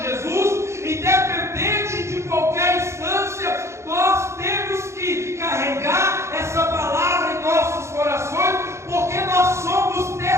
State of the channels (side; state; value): left; late; 0.13 ms